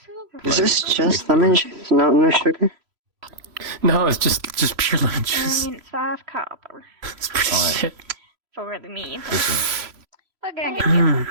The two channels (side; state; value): left; late; 3.0 ms